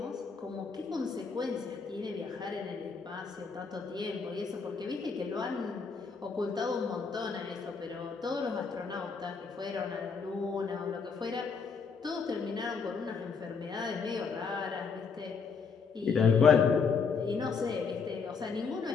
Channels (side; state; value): right; quieter; 5.4 dB